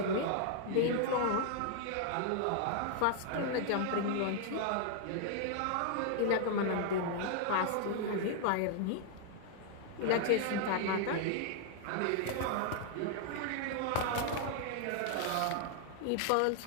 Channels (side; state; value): both; different; correlation 0.00